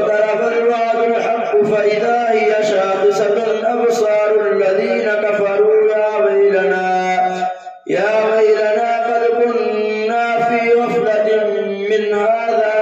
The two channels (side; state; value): both; identical; correlation 1.00